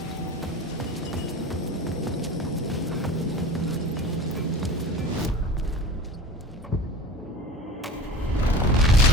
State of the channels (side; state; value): both; normal; correlation 0.38